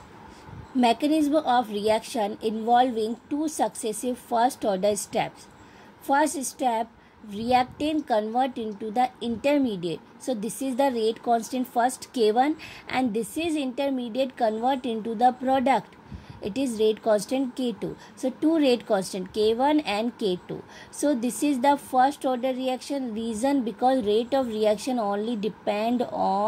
Mechanism of reaction involving two successive first order steps. First step, reactant convert into the intermediate. So this is the rate constant first K1, and this is intermediate convert into the product. It is rate constant K2. So two rate constant K1 and K2. So this is the first order reaction. Reason because rate of reaction only depend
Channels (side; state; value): both; identical; correlation 1.00